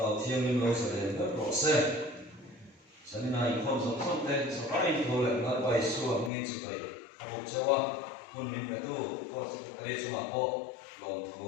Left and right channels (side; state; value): right; drops out; at 6.3 s